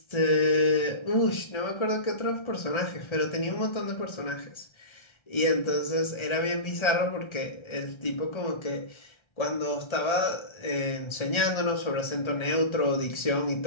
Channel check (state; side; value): late; right; 1.3 ms